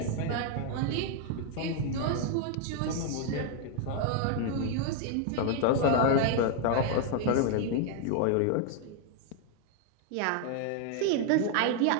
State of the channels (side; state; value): both; different; correlation 0.00